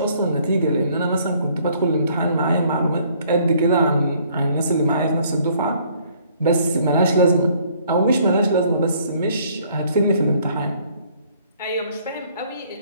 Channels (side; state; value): both; inverted; correlation -0.62